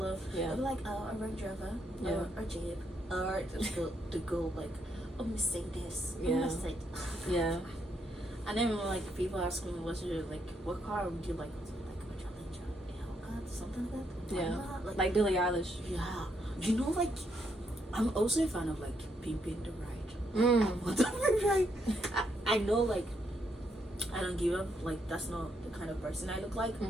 yeah. They're like a Range Rover, or a Jeep, or the go like a Mercedes. Mercedes. Yeah. And then like people ask me, "What's your like? What car would you like?" Something like that. Yeah, like Billie Eilish. Yeah, you know, like I'm also a fan of like pimping the ride. Whatever, right? I know, like I don't give up. Like that's not the kind of person I look like.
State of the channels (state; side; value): normal; both; correlation 0.76